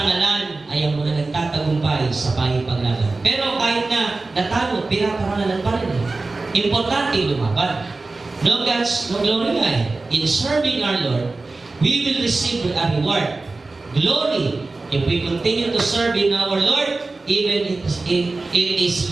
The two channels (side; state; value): left; quieter; 3.5 dB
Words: ay ang mga nagtatagumpay sa paglaban. Pero kahit na natalo, pinaparangalan pa rin. Importante lumaban. No gods, no glory nga eh. In serving our Lord, we will receive a reward. Glory. If we continue to serve in our Lord, even it is